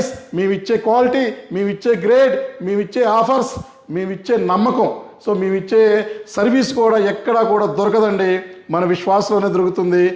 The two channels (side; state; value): both; identical; correlation 1.00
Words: మేమిచ్చే క్వాలిటీ, మేమిచ్చే గ్రేడ్, మేమిచ్చే ఆఫర్స్, మేమిచ్చే నమ్మకం, సో మేమిచ్చే సర్వీస్ కూడా ఎక్కడా కూడా దొరకదండి, మన విశ్వాసంలోనే దొరుకుతుంది.